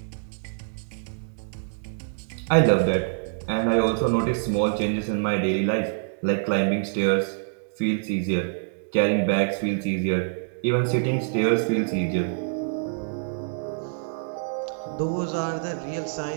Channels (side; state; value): left; silent; digital silence